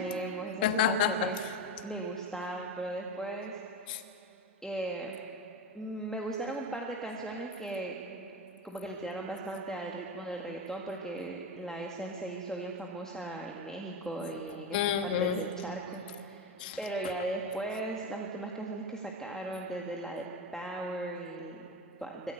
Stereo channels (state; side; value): normal; both; correlation 0.18